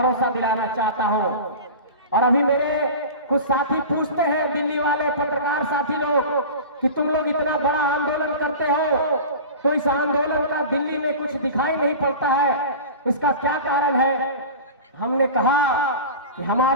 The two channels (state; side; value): inverted; both; correlation -0.33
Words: दिलाना चाहता हूं। और अभी मेरे कुछ साथी पूछते हैं, दिल्ली वाले पत्रकार साथी लोग, कि तुम लोग इतना बड़ा आंदोलन करते हो तो इस आंदोलन का दिल्ली में कुछ दिखाई नहीं पड़ता है, इसका क्या कारण है? हमने कहा कि